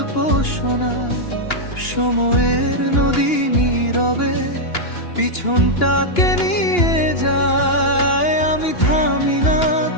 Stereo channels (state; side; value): late; right; 2.9 ms